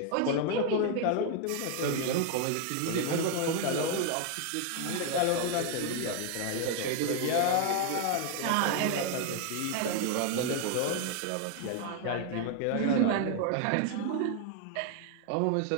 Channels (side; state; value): both; different; correlation 0.00